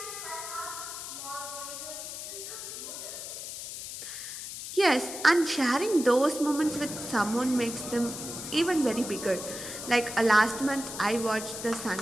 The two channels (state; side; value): noise; left; hiss, 8 dB below the sound